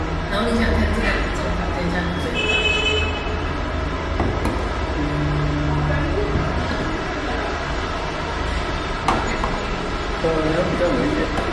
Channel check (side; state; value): both; identical; correlation 1.00